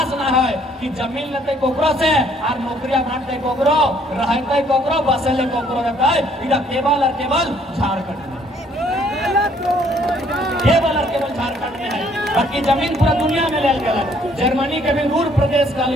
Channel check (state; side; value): normal; both; correlation 0.63